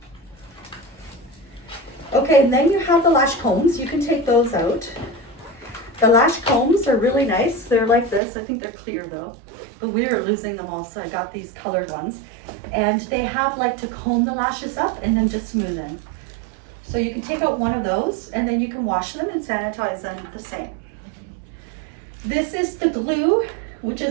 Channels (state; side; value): drops out; left; at 8.2 s